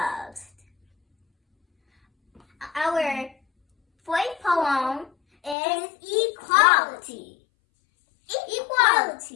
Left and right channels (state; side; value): drops out; right; at 5.6 s